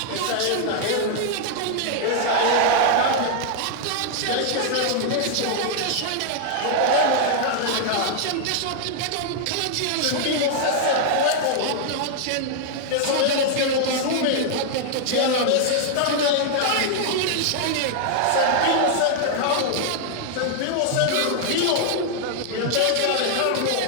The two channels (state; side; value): different; both; correlation 0.00